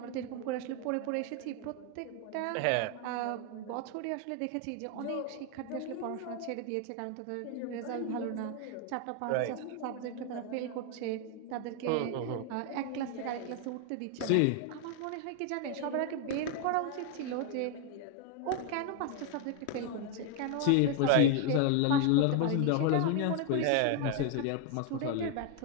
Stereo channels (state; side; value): different; both; correlation 0.01